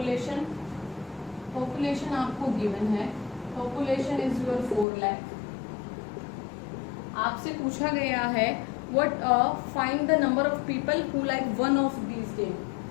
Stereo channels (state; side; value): drops out; right; at 4.9 s